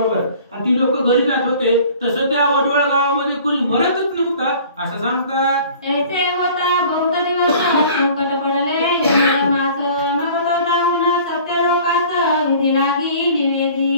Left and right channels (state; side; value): inverted; both; correlation -0.48